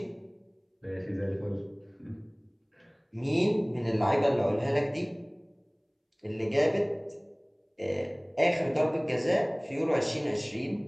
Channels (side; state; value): both; identical; correlation 1.00